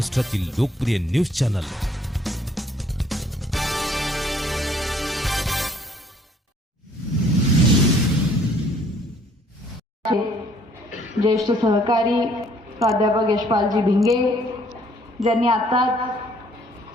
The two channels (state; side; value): normal; both; correlation 0.61